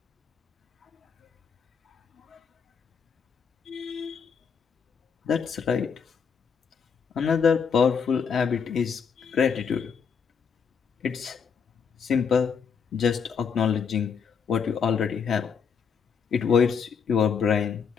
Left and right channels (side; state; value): right; quieter; 6.4 dB